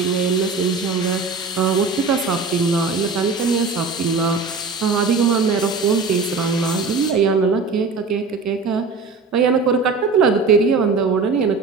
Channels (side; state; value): left; quieter; 4.3 dB